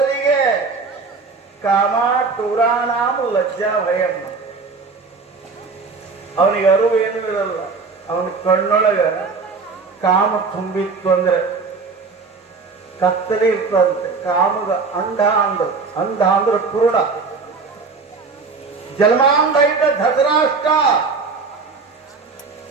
ಕಾಮ ಟೂರಾಣಾಮ ಲಜ್ಜಾ ಭಯಮ್ಮ. ಅವನಿಗೆ ಅರಿವು ಏನೂ ಇರಲ್ಲ. ಅವನ ಕಣ್ಣೊಳಗ ಕಾಮ ತುಂಬಿತ್ತು ಅಂದ್ರೆ ಕತ್ತಲೆ ಇರ್ತದಂತೆ. ಕಾಮಗ ಅಂಧ ಅಂದ್ರೆ ಪೂರ್ಣ. ಜನ್ಮಾಂಧ ಇದ್ದ ಧೃತರಾಷ್ಟ್ರ,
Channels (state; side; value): quieter; left; 4.6 dB